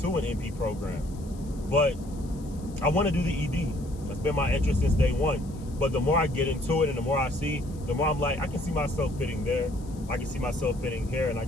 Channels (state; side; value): noise; left; hiss, 24 dB below the sound